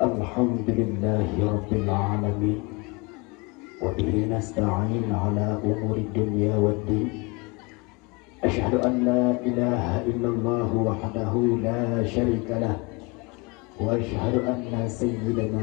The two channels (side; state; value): right; quieter; 27.3 dB